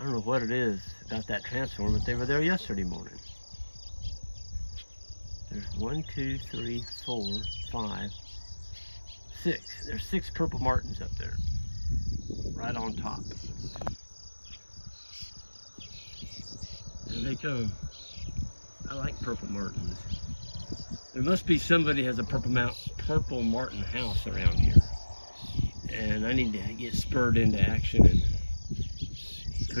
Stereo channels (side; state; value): both; inverted; correlation -1.00